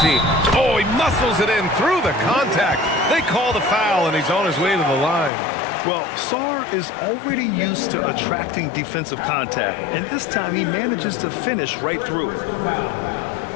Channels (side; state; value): right; drops out; at 5.3 s